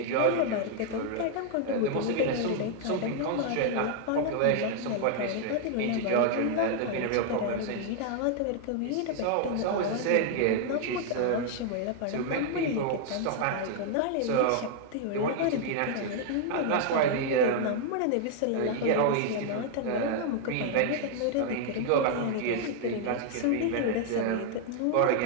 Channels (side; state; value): both; different; correlation 0.00